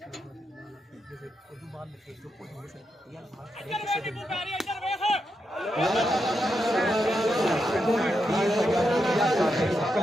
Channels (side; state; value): both; normal; correlation 0.84